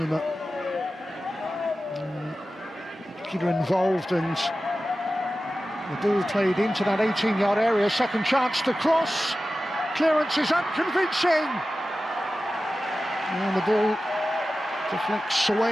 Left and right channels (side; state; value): both; normal; correlation 0.94